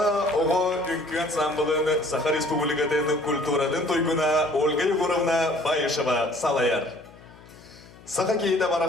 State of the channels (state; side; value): noise; left; hum, 23 dB below the sound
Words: оғы үңкі ансамблын Саха Республикатын культурадын тойгуна Ольга Егоровна Байышева салаяр. Саха кейді